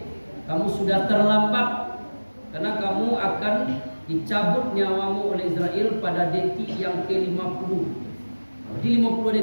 Kamu sudah terlambat karena kamu akan dicabut nyawamu oleh Israel pada detik yang ke-50. Di 50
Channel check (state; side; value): inverted; both; correlation -1.00